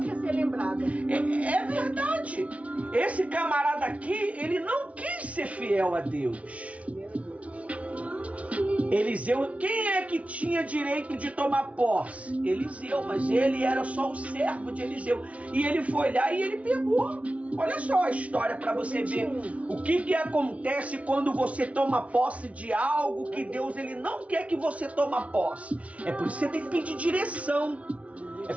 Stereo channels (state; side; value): late; left; 0.065 ms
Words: ser lembrada. É verdade. Esse camarada aqui, ele não quis ser fiel a Deus. Eliseu, quem é que tinha direito de tomar posse? Eliseu, mas ele era só o servo de Eliseu. E ele foi lá e ele pegou. Olha só a história para você ver o que acontece quando você toma posse de algo que Deus ele não quer que você toma posse. É por isso que você tem que pedir direção. É